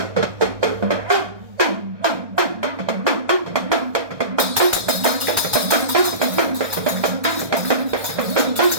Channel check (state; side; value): late; left; 1.6 ms